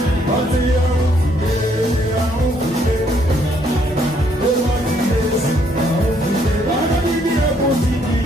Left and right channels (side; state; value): both; normal; correlation 0.69